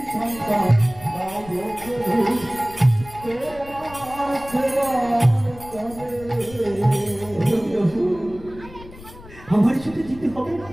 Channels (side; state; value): left; noise; rumble, 18 dB below the sound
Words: সন্তান দাও গো প্রভু তোমার সেবা করে আমার সাথে দিতে হবে না,